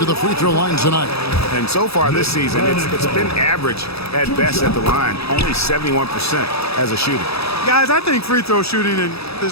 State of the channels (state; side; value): late; right; 0.78 ms